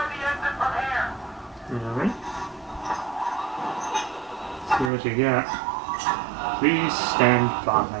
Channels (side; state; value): left; drops out; at 4.9 s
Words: Alright. See what you got. Please stand by.